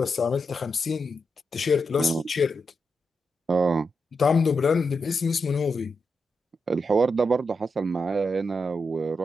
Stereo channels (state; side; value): normal; both; correlation 0.85